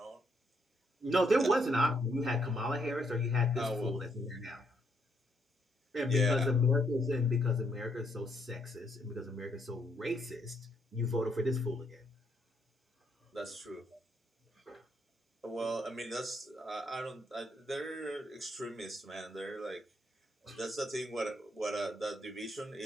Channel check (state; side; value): normal; both; correlation 0.74